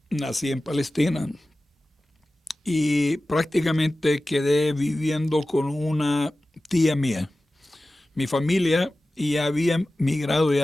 nací en Palestina y prácticamente quedé viviendo con una tía mía. Mi familia ya habían migrado y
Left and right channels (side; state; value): both; normal; correlation 0.96